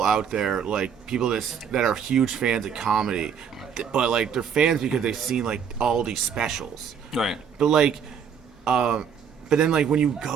out there, like people that are huge fans of comedy, but like they're fans because they've seen like all these specials. Right. But like, but then like when you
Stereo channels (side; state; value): left; quieter; 7.3 dB